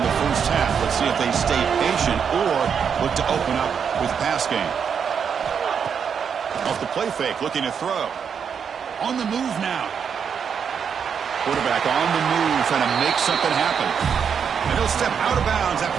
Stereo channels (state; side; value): quieter; left; 7.0 dB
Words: the first half. Let's see if they stay patient or look to open up with pass game. Off the play fake, looking to throw. On the move now. Quarterback on the move, trying to make something happen. And he'll step out of bounds